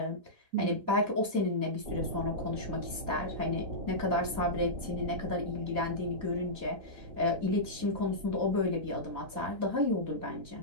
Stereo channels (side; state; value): left; late; 3.9 ms